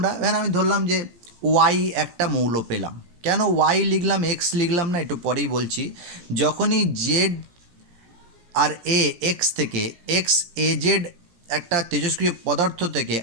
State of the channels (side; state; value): left; late; 17 ms